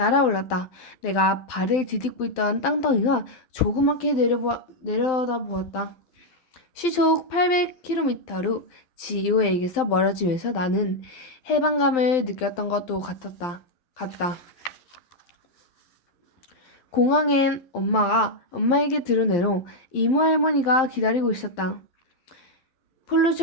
내가 발을 디딛고 있던 땅덩이가 조그맣게 내려다보았다. 시속 800km로 지오에게서 멀어지면서 나는 해방감을 느꼈던 것도 같다. 공항엔 엄마에게 들은 애로 이모 할머니가 기다리고 있었다. 폴로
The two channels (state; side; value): late; right; 12 ms